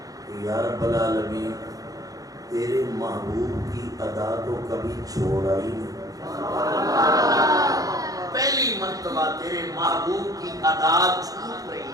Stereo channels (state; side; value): late; left; 0.17 ms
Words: کہ یا رب العالمین تیرے محبوب کی ادا تو کبھی چھوڑا ہی نہیں. پہلی مرتبہ تیرے محبوب کی ادا چھوٹ